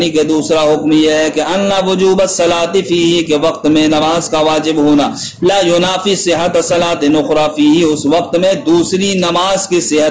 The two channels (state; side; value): identical; both; correlation 1.00